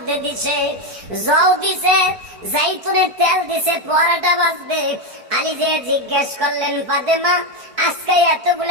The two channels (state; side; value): late; left; 4.6 ms